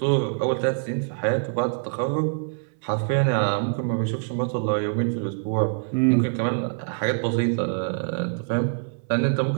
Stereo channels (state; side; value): silent; left; 62 dB below the other